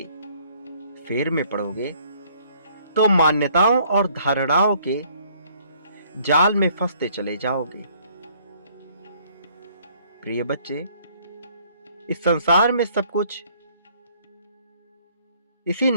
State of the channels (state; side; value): inverted; both; correlation -0.62